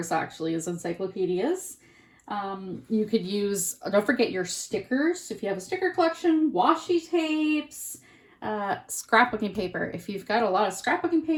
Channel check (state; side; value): identical; both; correlation 1.00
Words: actually, is encyclopedias. You could use, don't forget your stickers. If you have a sticker collection, washi tapes, scrapbooking paper. If you've got a lot of scrapbooking